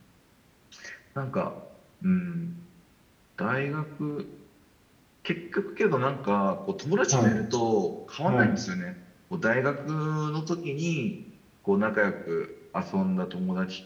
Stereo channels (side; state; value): both; identical; correlation 1.00